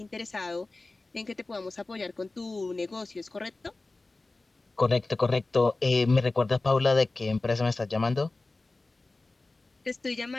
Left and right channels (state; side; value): quieter; right; 3.3 dB